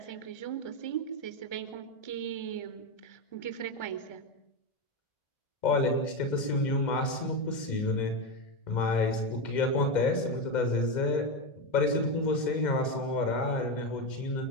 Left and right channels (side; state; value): right; late; 2.1 ms